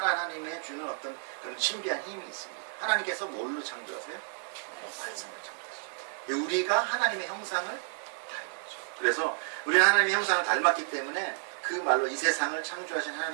주는 어떤 그런 신비한 힘이 있습니다. 하나님께서 뭘로 창조하세요? 말씀을 창조하시죠. 우리가 하나님의 형상을 닮았죠. 그래서 우리는 하나님의 형상을 닮았기 때문에 그 말로 이 세상을 창조하신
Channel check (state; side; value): silent; left; 57 dB below the other